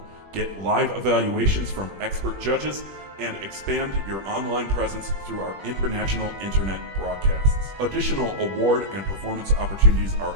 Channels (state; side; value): late; left; 21 ms